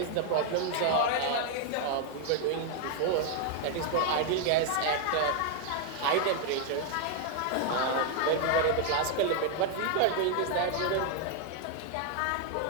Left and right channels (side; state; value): both; different; correlation 0.00